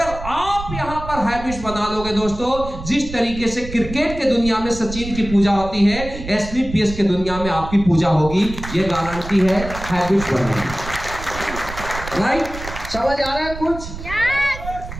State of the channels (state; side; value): noise; right; rumble, 10 dB below the sound